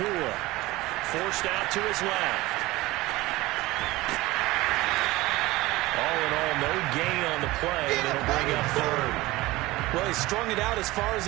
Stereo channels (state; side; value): quieter; left; 19.4 dB